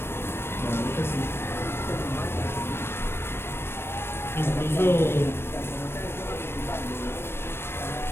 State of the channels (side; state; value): right; late; 0.12 ms